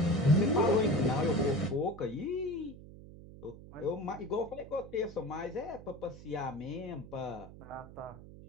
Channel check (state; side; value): noise; right; hum, 16 dB below the sound